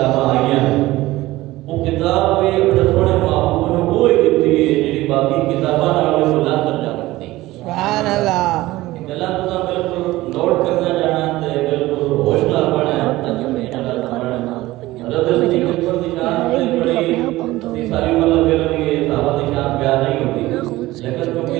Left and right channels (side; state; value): left; quieter; 17.8 dB